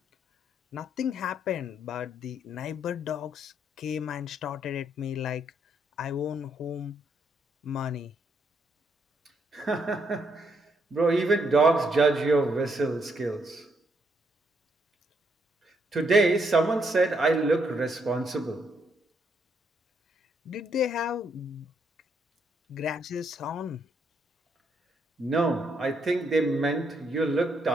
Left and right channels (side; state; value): both; normal; correlation 0.75